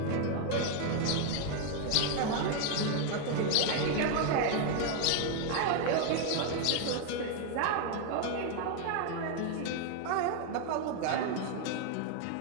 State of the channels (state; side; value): different; both; correlation 0.00